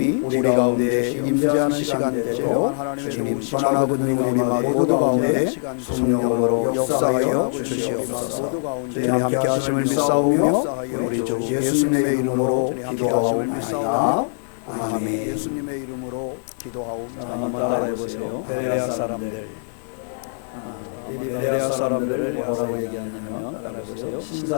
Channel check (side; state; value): right; silent; digital silence